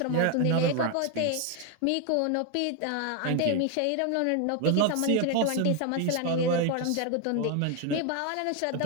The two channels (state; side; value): different; both; correlation 0.01